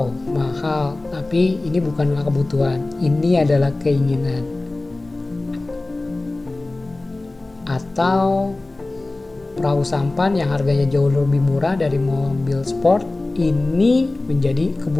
mahal. Tapi ini bukanlah kebutuhan, ini adalah keinginan. Atau perahu sampan yang harganya jauh lebih murah dari mobil sport, ini menjadi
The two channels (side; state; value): right; quieter; 3.0 dB